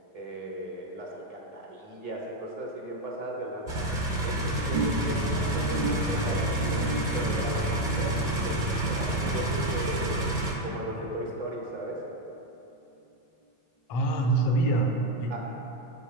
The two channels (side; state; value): right; late; 3.1 ms